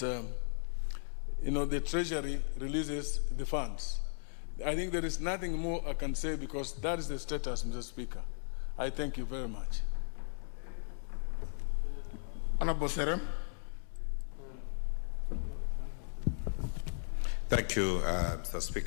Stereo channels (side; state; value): right; silent; digital silence